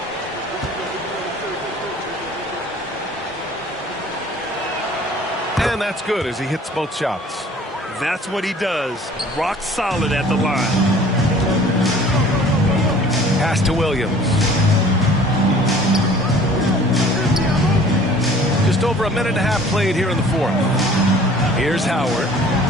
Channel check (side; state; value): both; normal; correlation 0.50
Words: And that's good as he hits both shots. That's what he does. Rock solid at the line. Pass to Williams. Just over a minute and a half played here in the fourth. Here's Howard.